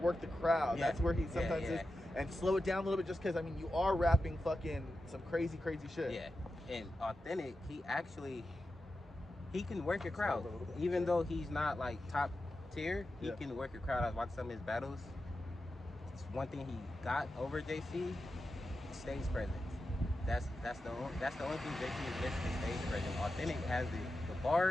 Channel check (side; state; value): both; normal; correlation 0.91